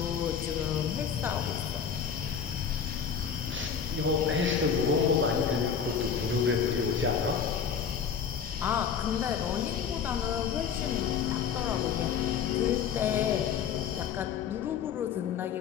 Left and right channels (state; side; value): quieter; right; 7.2 dB